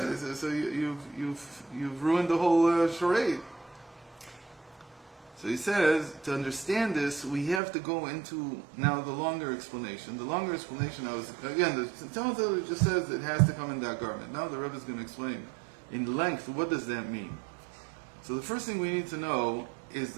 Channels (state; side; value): drops out; left; at 7.6 s